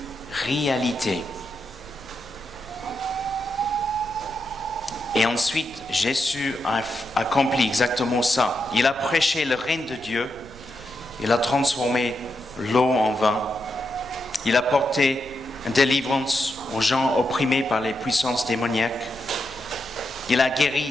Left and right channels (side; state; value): right; noise; rumble, 20 dB below the sound